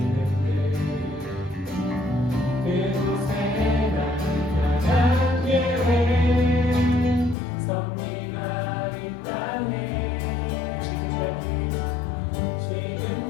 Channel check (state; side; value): drops out; right; at 7.4 s